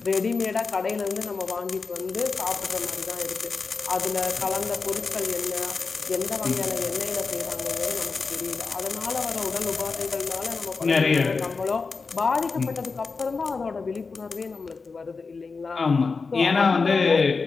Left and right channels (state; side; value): quieter; right; 4.5 dB